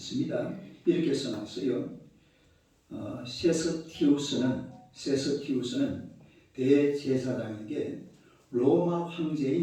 이렇게 써놨어요. 세스티우스는 대제사장에게 로마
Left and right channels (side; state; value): both; identical; correlation 1.00